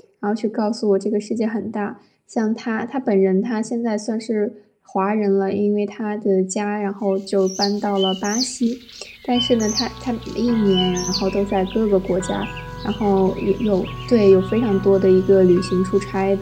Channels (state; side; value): identical; both; correlation 1.00